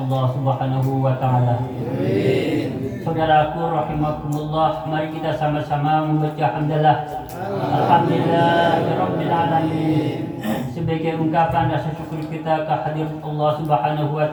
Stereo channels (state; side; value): identical; both; correlation 1.00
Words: Subhanahu wa taala. Saudaraku rahimakumullah, mari kita sama-sama membaca hamdalah. Alhamdulillahirabbil alamin. Sebagai ungkapan rasa syukur kita kehadirat Allah Subhanahu wa